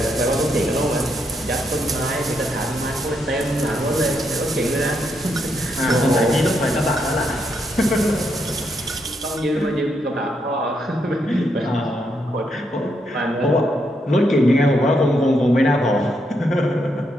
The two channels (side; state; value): both; normal; correlation 0.78